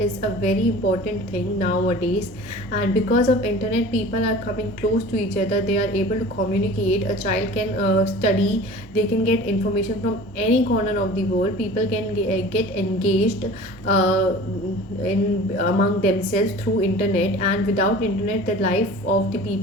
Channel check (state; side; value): normal; both; correlation 0.41